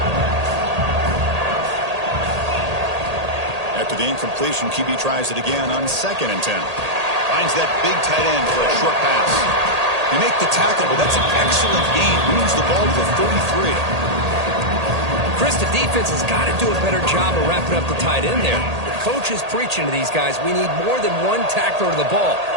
After the incompletion, QB tries it again on second and 10. Finds that big tight end for a short pass. They make the tackle, but that's an excellent gain. Moves the ball to the 33. Chris, the defense has got to do a better job of wrapping up the tight end there. The coach is preaching to these guys, we need more than one tackler to the ball.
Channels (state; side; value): late; left; 1.8 ms